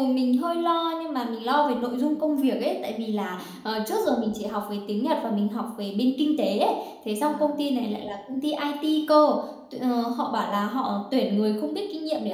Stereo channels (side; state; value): both; identical; correlation 1.00